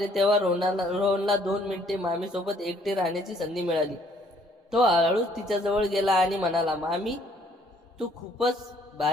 तेव्हा रोहनला 2 मिनिटे मामीसोबत एकटे राहण्याची संधी मिळाली. तो हळूच तिच्याजवळ गेला आणि म्हणाला, मामी, तू खूपच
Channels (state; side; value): normal; both; correlation 0.63